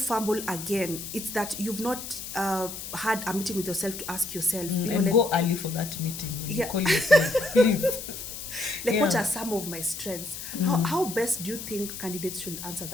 again, it's that you've not had a meeting with yourself to ask yourself. Go early for that meeting when you call yourself, please. What are some of my strengths? How best do you think candidates should answer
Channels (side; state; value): left; noise; hiss, 9 dB below the sound